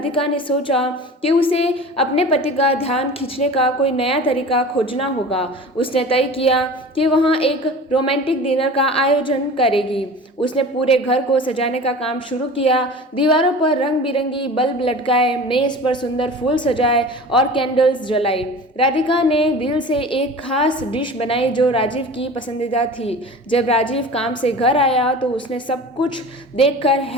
ने सोचा कि उसे अपने पति का ध्यान खींचने का कोई नया तरीका खोजना होगा। उसने तय किया कि वहाँ एक रोमांटिक डिनर का आयोजन करेगी। उसने पूरे घर को सजाने का काम शुरू किया। दीवारों पर रंग बिरंगी बल्ब लटकाए, मेज पर सुंदर फूल सजाए और कैंडल्स जलाई। राधिका ने दिल से एक खास डिश बनाई जो राजीव की पसंदीदा थी। जब राजीव काम से घर आया तो उसने सब कुछ देखकर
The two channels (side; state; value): both; normal; correlation 0.37